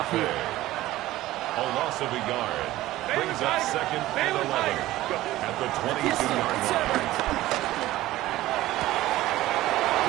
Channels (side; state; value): left; quieter; 16.2 dB